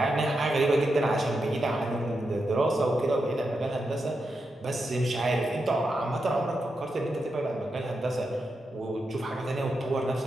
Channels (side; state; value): both; normal; correlation 0.86